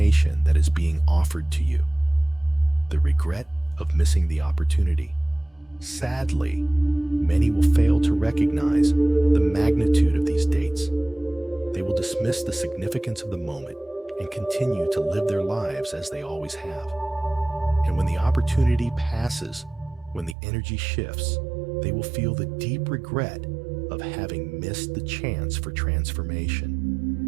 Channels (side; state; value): left; drops out; at 20.4 s